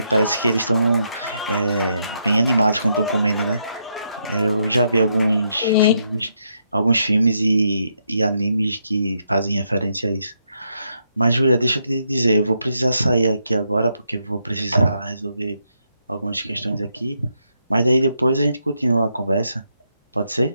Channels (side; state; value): both; inverted; correlation -0.79